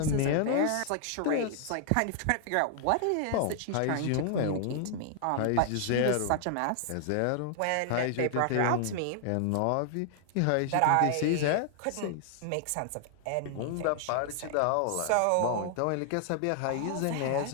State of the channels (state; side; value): different; both; correlation 0.00